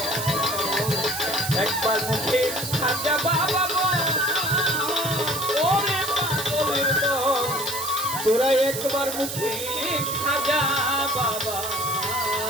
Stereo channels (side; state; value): right; noise; hiss, 5 dB below the sound